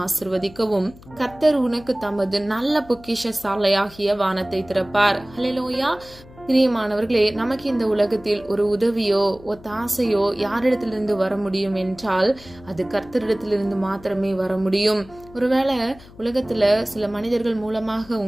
ஆசிர்வதிக்கவும் கர்த்தர் உனக்கு தமது நல்ல பொக்கிஷ சாலையாகிய வானத்தை திறப்பார். ஹல்லேலூயா. பிரியமானவர்களே, நமக்கு இந்த உலகத்தில் ஒரு உதவியோ ஒத்தாசையோ யாரிடத்திலிருந்து வர முடியும் என்றால் அது கர்த்தரிடத்திலிருந்து மாத்திரமே வர முடியும். ஒருவேளை உலகத்துல சில மனிதர்கள் மூலமாக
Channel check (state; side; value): noise; left; hum, 21 dB below the sound